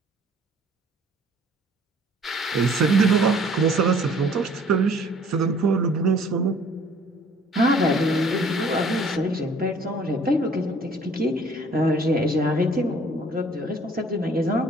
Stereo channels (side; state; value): both; normal; correlation 0.55